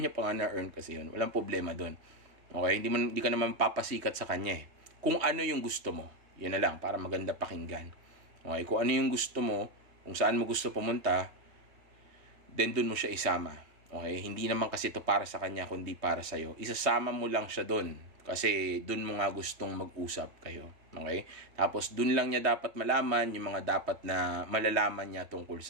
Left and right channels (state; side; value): late; left; 3.1 ms